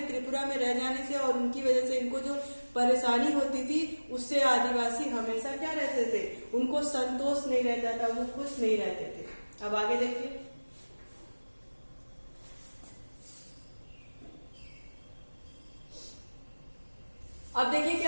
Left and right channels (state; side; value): inverted; both; correlation -1.00